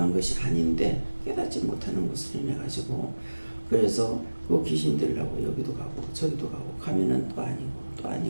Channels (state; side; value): inverted; both; correlation -1.00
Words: 것이 아닌데 깨닫지 못하는 것을 인해가지고 그래서 그 귀신들하고 여기도 가고 저기도 가고 가면은 또